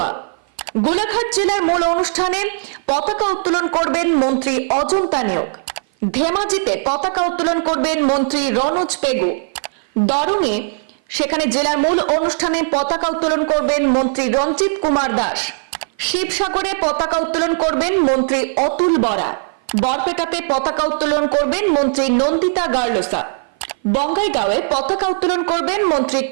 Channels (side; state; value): left; silent; 55 dB below the other